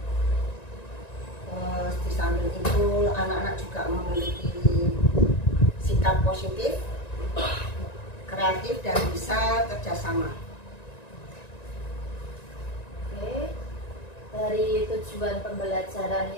Di samping itu anak-anak juga memiliki sikap positif, kreatif dan bisa kerjasama. Oke, dari tujuan pembelajaran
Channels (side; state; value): right; late; 1.9 ms